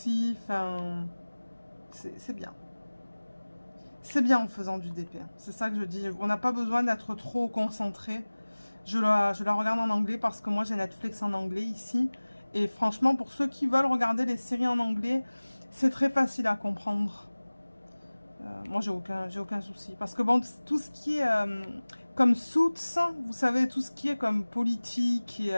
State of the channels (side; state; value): both; inverted; correlation -1.00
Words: enfin, c'est bien. C'est bien en faisant du DP, c'est ça que je dis. On n'a pas besoin d'être trop concentré. Je la regarde en anglais parce que moi j'ai Netflix en anglais ici. Et franchement, pour ceux qui veulent regarder les séries en anglais, c'est très facile à comprendre. Moi j'ai aucun souci. Parce que bon, tout ce qui est comme Suits, vous savez, tout ce qui est comme politique et...